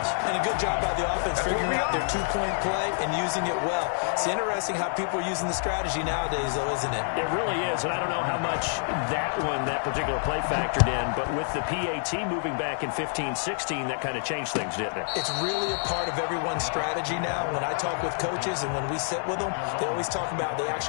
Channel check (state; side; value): silent; right; digital silence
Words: And a good job by the offense figuring out their 2-point play and using it well. It's interesting how people are using the strategy nowadays, though, isn't it? It really is, and I don't know how much that particular play factored in, but with the PAT moving back in 15-16, that kind of changed things, didn't it? It's really a part of everyone's strategy now. When I talk with coaches and when we sit with them, they always talk about they